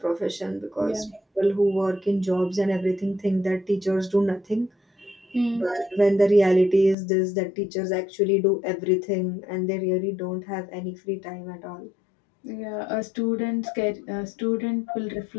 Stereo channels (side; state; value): right; drops out; at 7.0 s